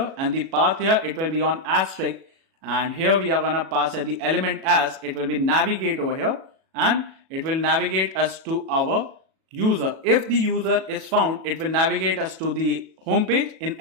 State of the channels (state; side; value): late; left; 37 ms